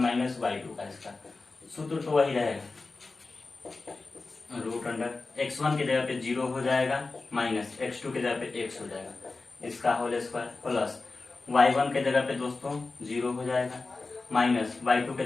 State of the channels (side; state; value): right; quieter; 3.7 dB